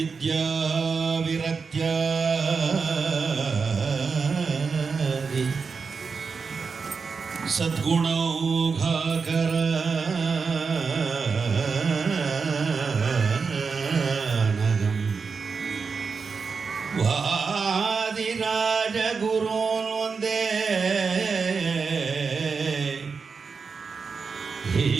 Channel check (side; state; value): left; quieter; 5.1 dB